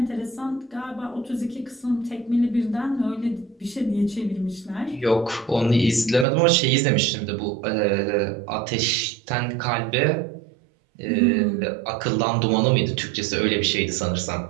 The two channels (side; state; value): left; drops out; at 6.2 s